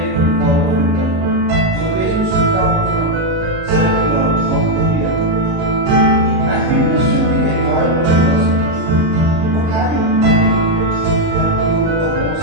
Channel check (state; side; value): late; left; 38 ms